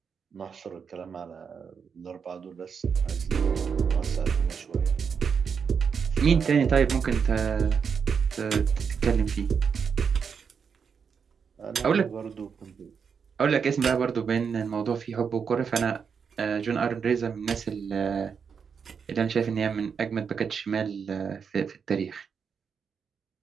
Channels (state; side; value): quieter; left; 6.4 dB